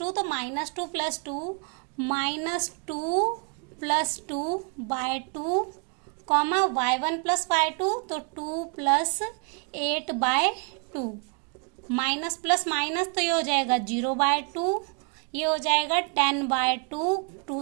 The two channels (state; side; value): quieter; left; 37.4 dB